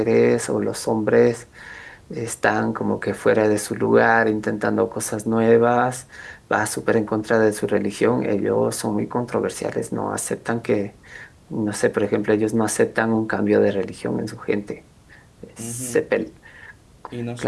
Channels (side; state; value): both; identical; correlation 1.00